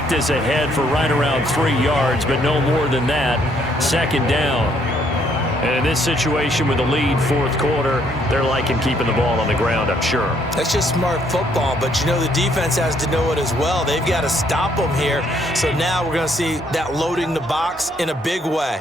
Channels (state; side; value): normal; both; correlation 0.68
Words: this ahead for right around 3 yards, but no more than that. 2nd down. And in this situation with the lead 4th quarter, they're liking keeping the ball on the ground, I'm sure. That's just smart football, but you know the defense has to know it as well. They've got to stop them here. So now we're going to see that loading the box in a big way.